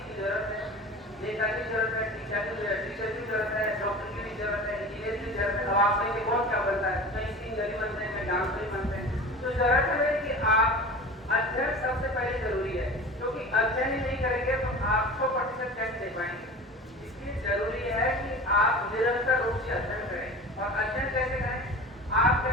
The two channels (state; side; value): normal; both; correlation 0.36